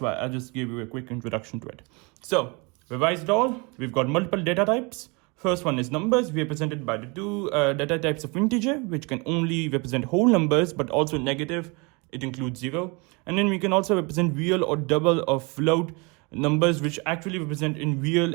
why I just gave you a quick introduction to it. So revise it all. We've got multiple data types. First one is numbers, represented by the two data types of integer, which can only represent whole numbers, but also negative. It includes 0. And then we can also represent real or double or float numbers, which actually represent in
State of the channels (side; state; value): left; quieter; 29.3 dB